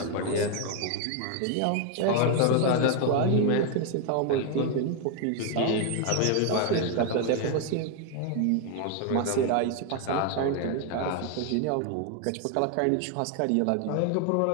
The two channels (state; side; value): different; both; correlation 0.01